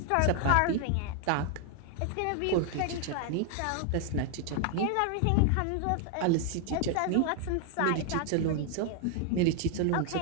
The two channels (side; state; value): both; different; correlation 0.00